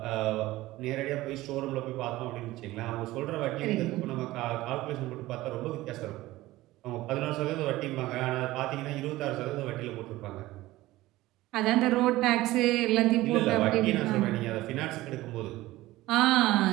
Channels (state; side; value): quieter; left; 17.5 dB